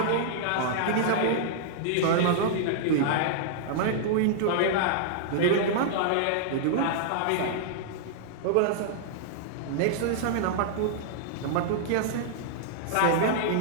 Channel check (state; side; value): different; both; correlation -0.01